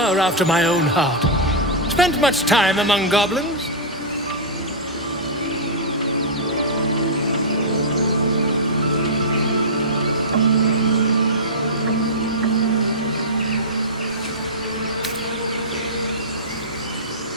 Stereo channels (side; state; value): both; normal; correlation -0.11